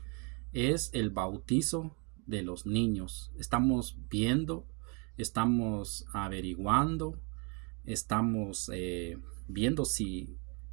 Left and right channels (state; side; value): quieter; left; 34.3 dB